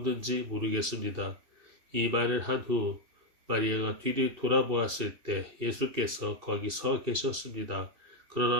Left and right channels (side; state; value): left; late; 2.6 ms